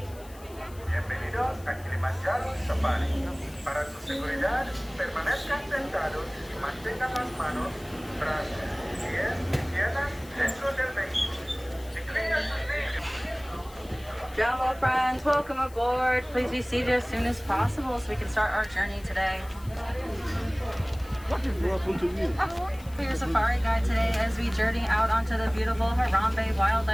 Bienvenidos a Kilimanjaro Safari. Para su seguridad, permanezcan sentados y mantengan las manos, brazos, pies y piernas dentro del vehículo. Inclina sus niños. Jumbo friends, welcome aboard. Please be seated as soon as possible so we can start our journey today. For your safari guide today as we journey out onto the beautiful Harambe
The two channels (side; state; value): left; noise; hiss, 22 dB below the sound